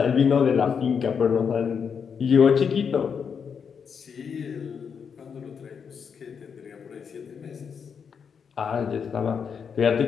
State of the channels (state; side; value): quieter; right; 6.6 dB